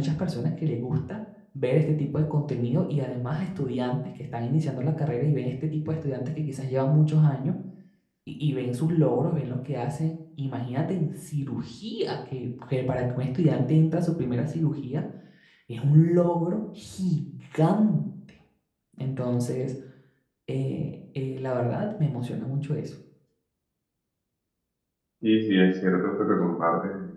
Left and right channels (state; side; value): identical; both; correlation 1.00